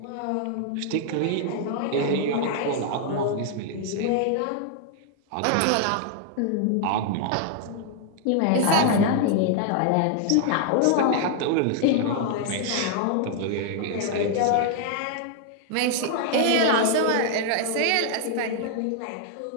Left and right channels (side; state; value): both; different; correlation 0.00